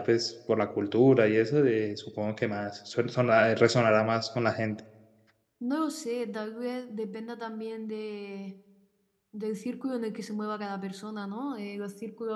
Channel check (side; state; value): both; identical; correlation 1.00